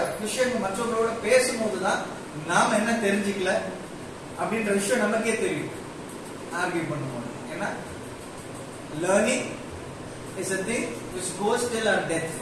விஷயங்கள் மற்றவங்களோட பேசும்போதுதான் நாம என்ன தெரிஞ்சுக்கல அப்படின்ற விஷயம் நமக்கே தெரியும் ஆர்கியூ பண்ணும்போது. ஏன்னா learning is a thing which goes till our death,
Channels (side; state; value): both; identical; correlation 1.00